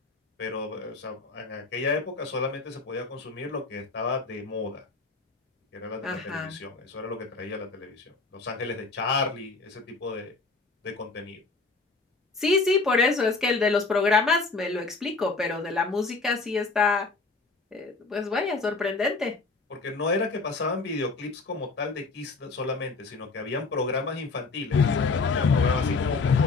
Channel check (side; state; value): right; quieter; 4.0 dB